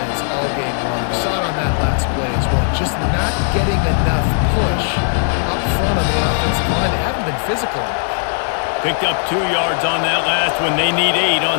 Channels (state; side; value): silent; right; digital silence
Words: all game long. You saw it on that last play as well. Just not getting enough push up front on the offensive line. They haven't been physical enough. Picked up 2 yards on that last one. They need 8